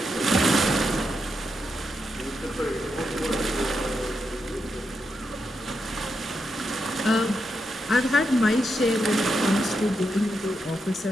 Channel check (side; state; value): both; normal; correlation 0.84